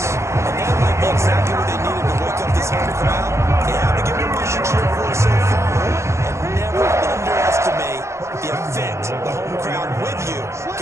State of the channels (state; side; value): late; left; 0.14 ms